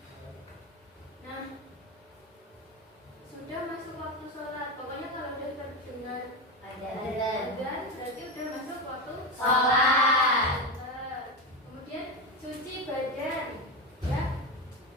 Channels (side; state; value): both; normal; correlation 0.16